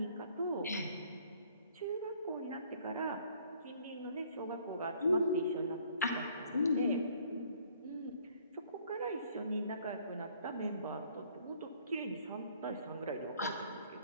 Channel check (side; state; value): both; inverted; correlation -0.60